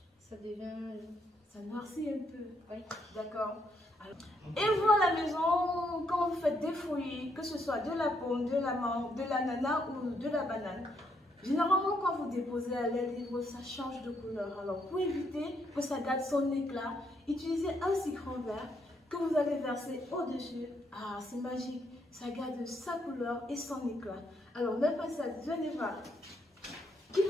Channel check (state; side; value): normal; both; correlation 0.75